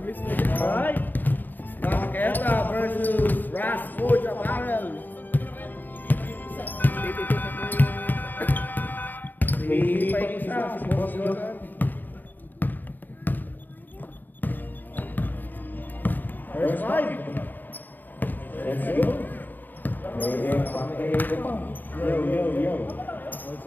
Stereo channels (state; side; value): late; right; 0.089 ms